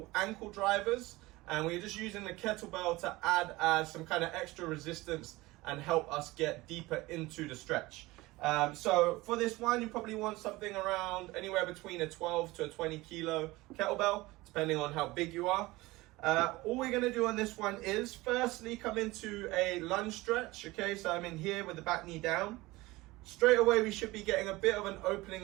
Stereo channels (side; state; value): left; quieter; 20.3 dB